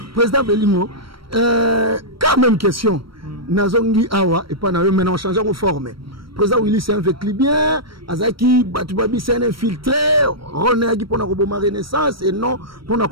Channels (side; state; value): left; late; 0.74 ms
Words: Président Belingo, quand même question. Nazongi Awa et pas maintenant on change de forme. Président Willy c'est un fait bien. Azaki Batubabi c'est un infiltré. René Agi pour la Renaissance et non pour la